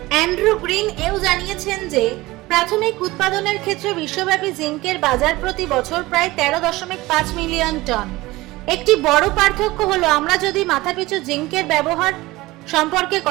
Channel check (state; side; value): quieter; left; 19.5 dB